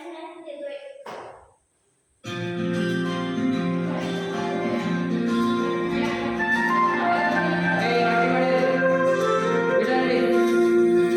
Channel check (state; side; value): identical; both; correlation 1.00